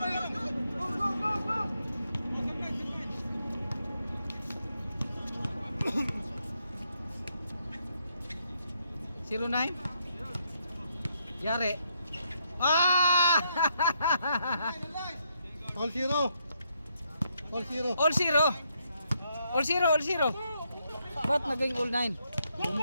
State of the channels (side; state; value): both; inverted; correlation -0.77